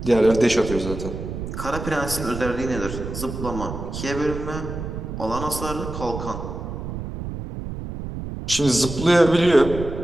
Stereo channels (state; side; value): noise; right; rumble, 7 dB below the sound